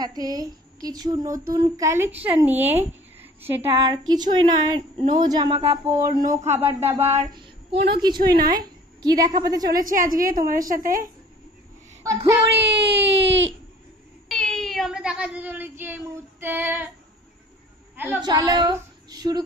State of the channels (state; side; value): normal; both; correlation 0.50